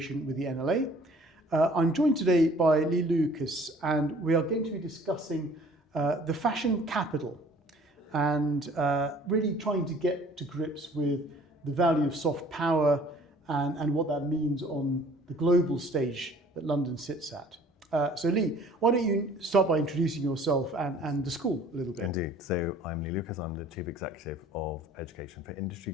with the NLA. I'm joined today by Lee Lucas and we are going to be discussing the fashion capital and really trying to get to grips with the value of soft power and what that means on the global stage that London sits at. So Lee, why don't you start by introducing yourself and the school a little bit? Indeed. So I'm Lee Lucas. I'm the Chief Executive of Education for Industry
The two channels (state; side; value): normal; both; correlation 0.53